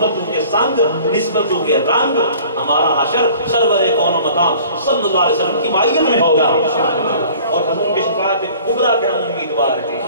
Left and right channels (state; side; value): inverted; both; correlation -0.49